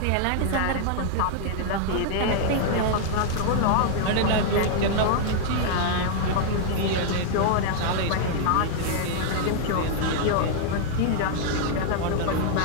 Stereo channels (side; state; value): both; different; correlation -0.01